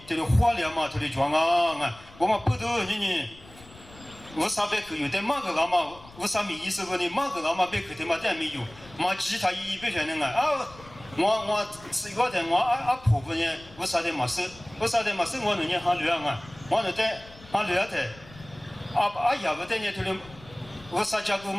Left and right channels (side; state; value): left; noise; rumble, 21 dB below the sound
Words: 这里花量嘛这里装我嘛不都你我撒百口有的嘛个老嘛，我撒米意思不呢嘛个老嘛百口的嘛但没有，嘛其他一百全的我是一个的我婆婆呢，我撒的嘛是我能年哈流我能在哈流的。呀不得呢，这里我撒家狗